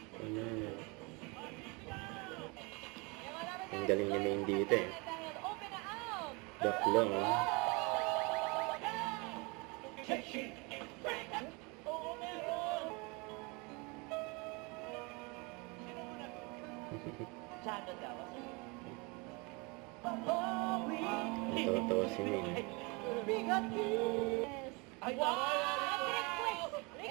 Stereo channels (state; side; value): quieter; left; 28.8 dB